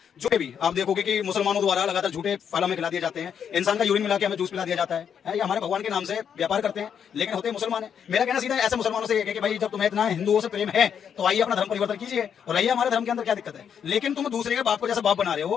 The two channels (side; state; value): right; quieter; 7.9 dB